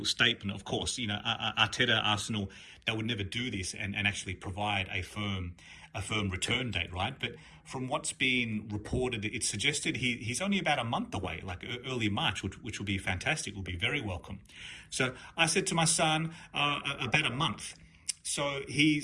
statement, of course. You know, Arteta, Arsenal, they would never do this and actually provide a firm return date, right? But from what's been reported, it suggested he's only about a month away, like early March, which will be fantastic, will be very welcome. So I said to my son, about a month. So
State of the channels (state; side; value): identical; both; correlation 1.00